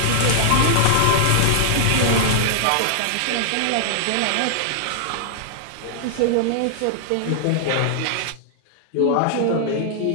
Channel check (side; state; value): both; different; correlation -0.01